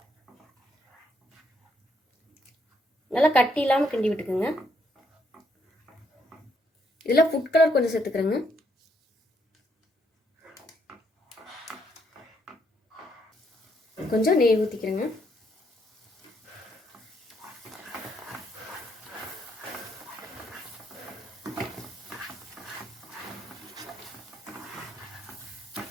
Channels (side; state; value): both; normal; correlation 0.73